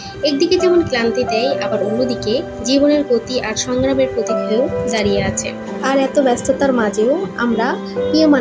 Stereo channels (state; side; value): identical; both; correlation 1.00